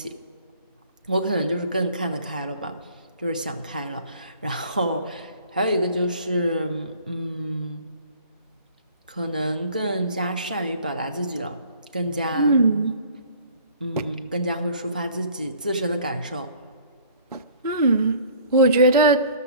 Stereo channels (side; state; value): both; inverted; correlation -0.52